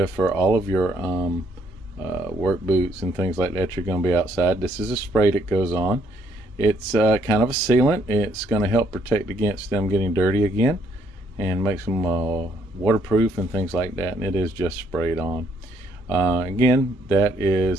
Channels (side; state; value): both; normal; correlation 0.69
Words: for all of your work boots and things like that. You're going to be outside. This is a spray that goes on. It's kind of a sealant. It's going to help protect against them getting dirty again and makes them waterproof and things like that. And it is just sprayed on. Again, that